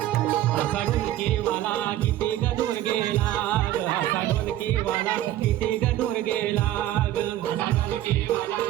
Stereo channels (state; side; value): quieter; left; 13.6 dB